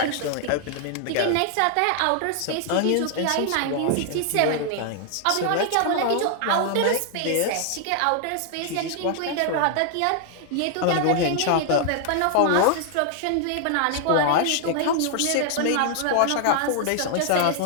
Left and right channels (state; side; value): different; both; correlation 0.00